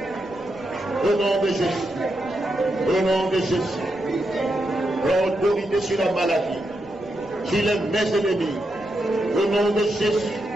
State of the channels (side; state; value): left; noise; rumble, 23 dB below the sound